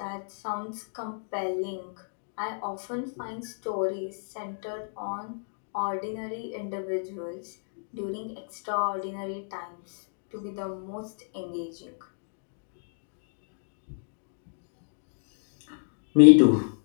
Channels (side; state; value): right; silent; digital silence